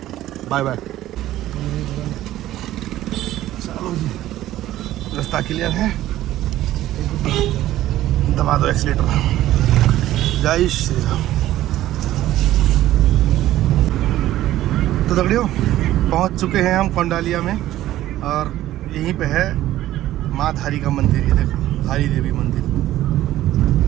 बाय बाय। चलो जी, रास्ता क्लियर है, दबा दो एक्सीलेटर। जय श्री राम। तो दगड़ियों पहुंच चुके हैं हम कोंडालिया में और यहीं पे है माँ धारी का मंदिर। ये देखो धारी देवी मंदिर,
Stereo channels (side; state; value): left; quieter; 14.2 dB